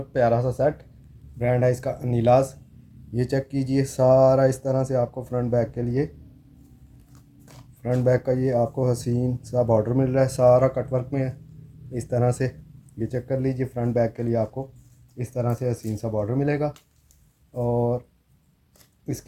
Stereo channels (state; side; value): identical; both; correlation 1.00